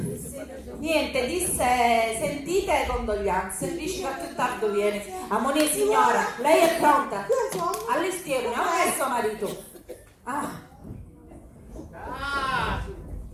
Niente, disse, sentite condoglianze, dici che più tardi viene. Ammonì signora, lei è pronta? All'estiero, non è suo marito.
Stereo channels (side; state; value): both; identical; correlation 1.00